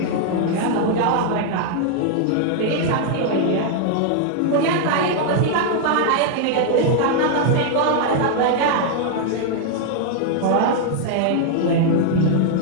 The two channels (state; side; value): different; both; correlation 0.00